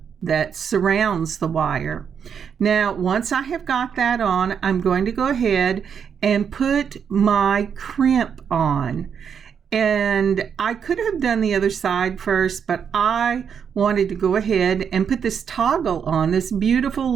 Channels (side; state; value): left; quieter; 7.3 dB